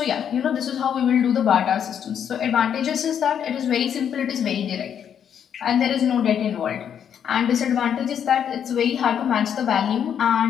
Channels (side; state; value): right; quieter; 8.6 dB